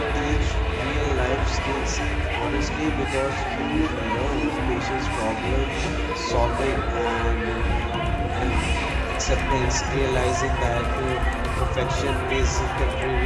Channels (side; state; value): both; identical; correlation 1.00